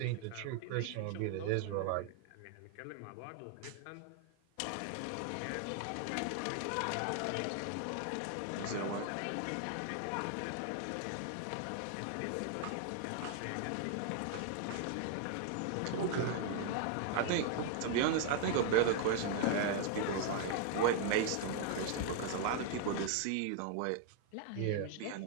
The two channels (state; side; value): different; both; correlation 0.00